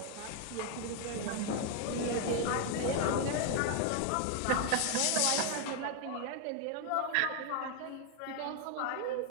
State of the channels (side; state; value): both; different; correlation 0.01